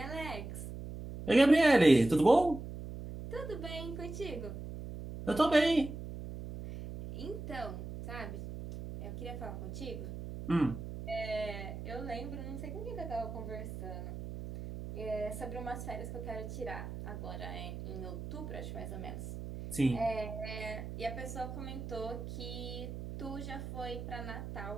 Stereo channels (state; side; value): noise; right; hum, 8 dB below the sound